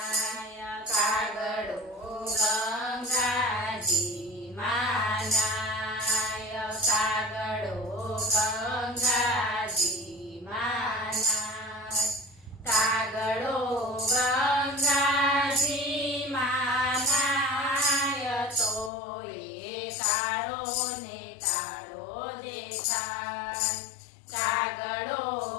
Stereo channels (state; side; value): drops out; right; at 18.9 s